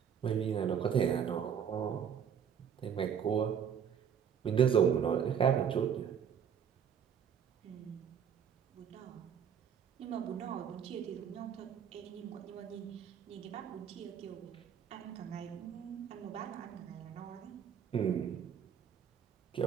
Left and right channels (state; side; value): quieter; left; 8.0 dB